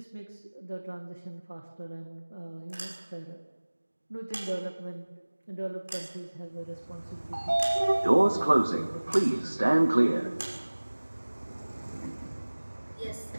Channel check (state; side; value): inverted; both; correlation -1.00